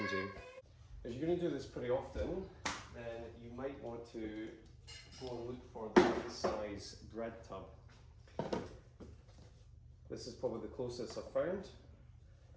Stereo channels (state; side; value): identical; both; correlation 1.00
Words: If you're going to do this pretty often, then you might want to go and look for the right size bread tub. This is probably the closest I've found.